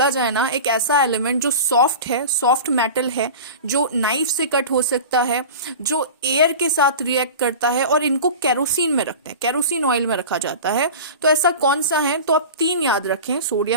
जाए ना एक ऐसा element जो soft है, सॉफ्ट मेटल है, जो नाइफ से कट हो सकता है, जो एयर के साथ रिएक्ट करता है और इनको केरोसिन में रखते हैं, केरोसिन ऑयल में रखा जाता है, तो ऐसा कौन सा है? तो आप 3 याद रखें.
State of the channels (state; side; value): inverted; both; correlation -0.33